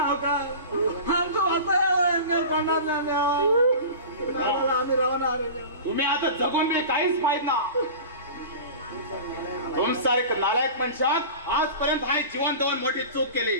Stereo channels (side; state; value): both; inverted; correlation -0.35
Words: आमचं आम्ही राहणार तुम्ही आता जगून मी काहीच पाहिजे ना तुमसारख नालायक मनुष्यात आजपर्यंत हा जीवन देऊन मोठी चूक केली